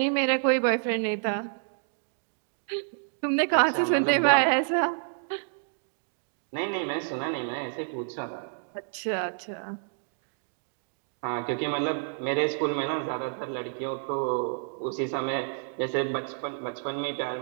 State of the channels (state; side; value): silent; left; digital silence